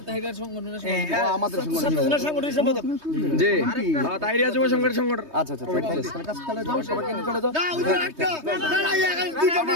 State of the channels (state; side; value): late; left; 3.2 ms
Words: আমাদের সংগঠনের সম্পাদক জি, হ্যাঁ, তাইরিয়া যুব সংগঠনের সংগঠন। আচ্ছা আচ্ছা, চলে যাও, সবাইকে নিয়ে চলে যাও।